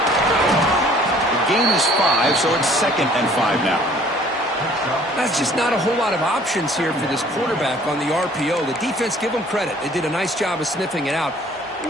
The gain is 5, so it's 2nd and 5 now. That's just not a whole lot of options here for this quarterback on the RPO. The defense, give them credit. They did a nice job of sniffing it out.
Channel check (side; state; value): both; normal; correlation 0.55